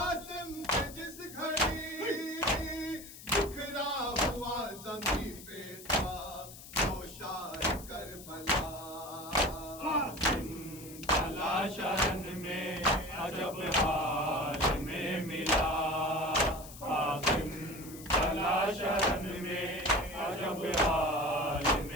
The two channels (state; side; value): noise; left; hiss, 15 dB below the sound